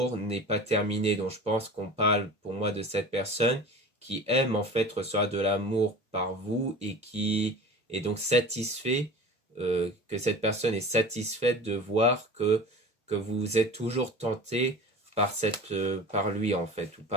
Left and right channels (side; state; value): both; normal; correlation 0.37